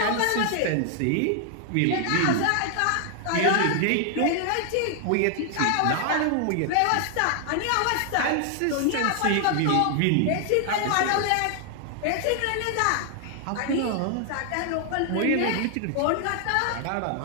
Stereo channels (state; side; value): different; both; correlation 0.00